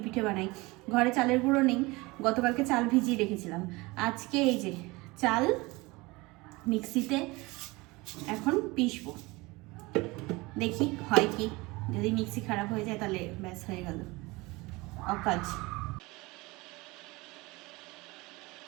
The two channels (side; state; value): left; quieter; 23.1 dB